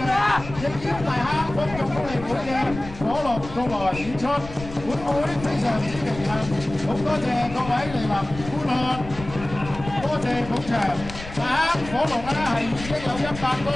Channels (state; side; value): noise; left; rumble, 12 dB below the sound